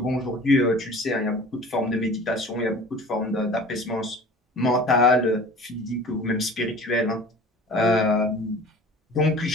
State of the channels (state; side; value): normal; both; correlation 0.43